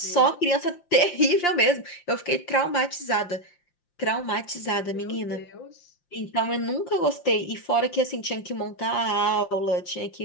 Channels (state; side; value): late; right; 5.7 ms